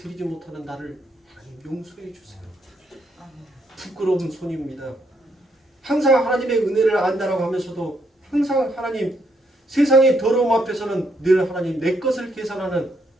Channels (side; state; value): both; normal; correlation 0.75